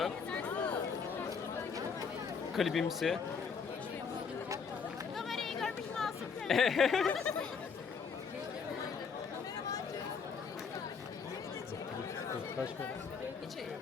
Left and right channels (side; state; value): right; quieter; 5.8 dB